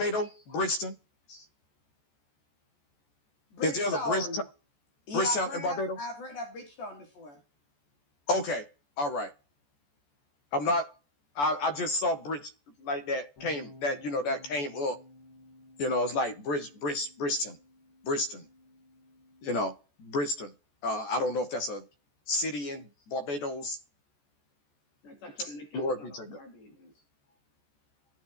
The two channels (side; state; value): right; late; 14 ms